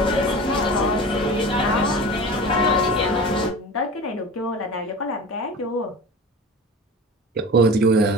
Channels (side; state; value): both; normal; correlation 0.35